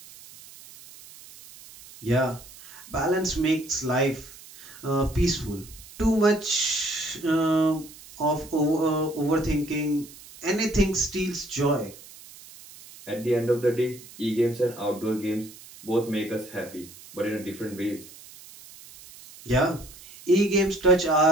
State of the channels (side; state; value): right; noise; hiss, 19 dB below the sound